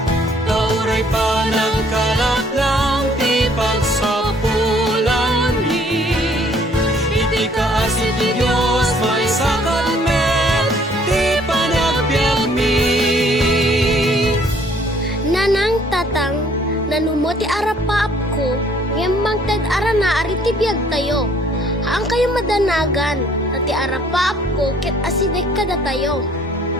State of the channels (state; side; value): normal; both; correlation 0.60